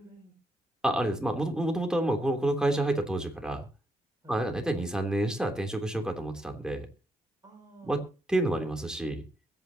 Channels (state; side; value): normal; both; correlation 0.79